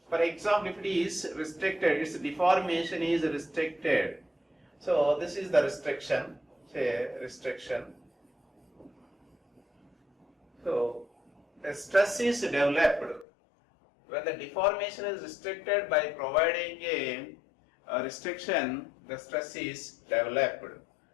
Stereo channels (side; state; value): right; drops out; at 13.2 s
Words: for example, if it is restricted, its deformation is restricted. So this is the restriction, say restriction. So a stress is developed when the deformation is restricted. By providing a restriction, the stress is developed.